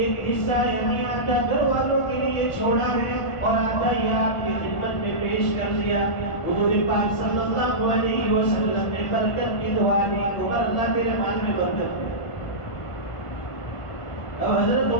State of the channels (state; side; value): late; right; 1.4 ms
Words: حصہ یعنی آدھا گھر والوں کے لیے چھوڑا ہے، اور آدھا یہ آپ کی خدمت میں پیش کر دیا۔ حضور پاک صلی اللہ علیہ وسلم نے برکت کی دعا دی، عمر اللہ تیرے مال میں برکت ہے۔ اب حضرت